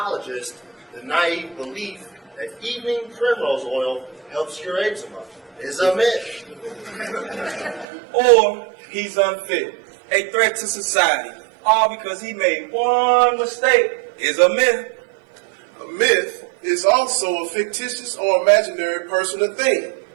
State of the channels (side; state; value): left; drops out; at 7.9 s